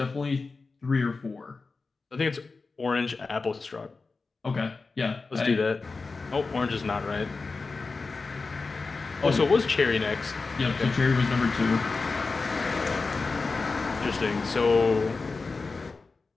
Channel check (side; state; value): right; quieter; 4.1 dB